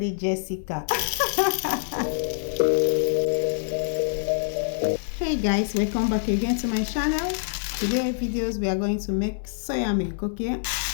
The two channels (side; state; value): right; silent; 61 dB below the other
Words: Jessica. Hey guys, welcome back again to my channel. Today videos we are going to make soya milk. Okay,